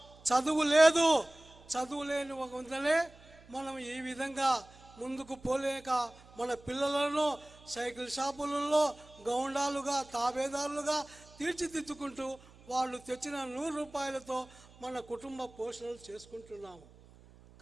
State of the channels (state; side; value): noise; right; hum, 24 dB below the sound